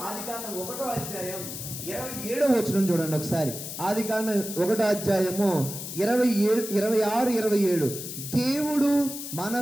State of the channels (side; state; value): left; noise; hiss, 8 dB below the sound